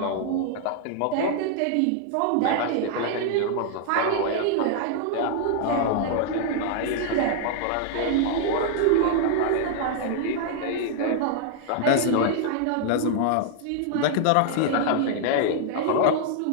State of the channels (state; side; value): different; both; correlation -0.01